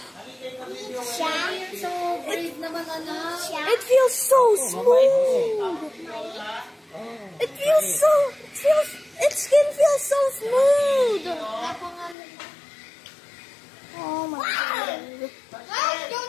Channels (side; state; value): right; drops out; at 12.2 s